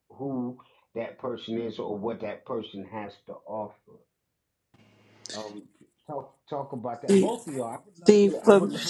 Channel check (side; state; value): both; identical; correlation 1.00